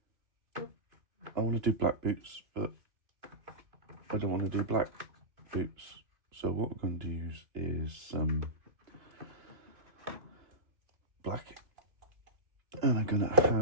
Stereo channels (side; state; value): left; late; 2.9 ms